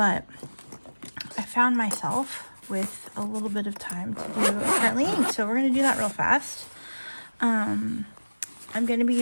I found myself with a little bit of time to do currently inked, so we're gonna do that real fast. I'm gonna be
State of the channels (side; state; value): both; inverted; correlation -1.00